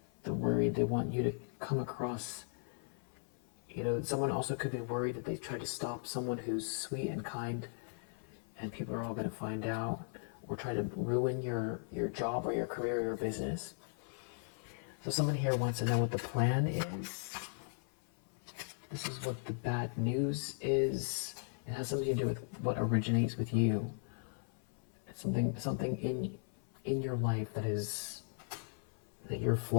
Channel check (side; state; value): right; silent; 53 dB below the other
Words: They want you to come across, someone also could be worried that they've tried to stop someone who's sweet and kind, and people are all going to find out, or try to ruin your job or your career or your business. So someone here wants to know what the plan is. This is what the bad news is. It has something to do with what originates with you. It's something in your life that you're